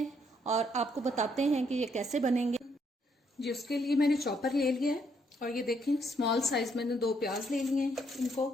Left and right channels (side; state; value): both; normal; correlation 0.72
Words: और आपको बताते हैं कि ये कैसे बनेंगे। जी, उसके लिए मैंने चॉपर ले लिया है और ये देखें स्मॉल साइज मैंने 2 प्याज ले लिए हैं। इनको